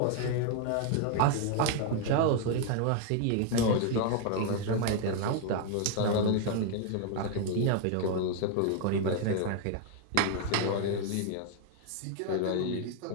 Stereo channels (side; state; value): both; different; correlation 0.00